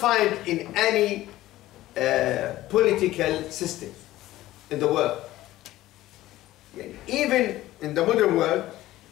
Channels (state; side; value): quieter; right; 15.8 dB